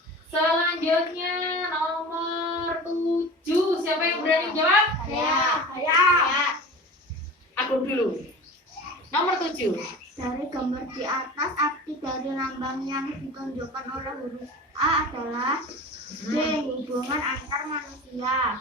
Selanjutnya nomor 7. Siapa yang berani jawab? Saya. Aku dulu. Nomor 7. Dari gambar di atas, arti dari lambang yang ditunjukkan oleh huruf A adalah D, hubungan antar manusia.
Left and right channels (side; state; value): both; normal; correlation 0.36